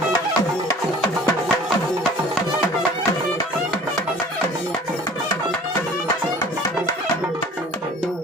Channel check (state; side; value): normal; both; correlation 0.47